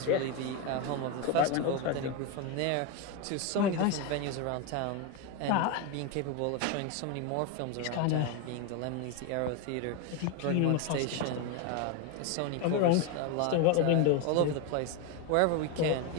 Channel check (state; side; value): different; both; correlation 0.02